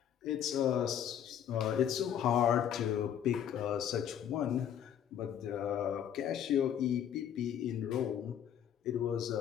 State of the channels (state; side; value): quieter; right; 9.5 dB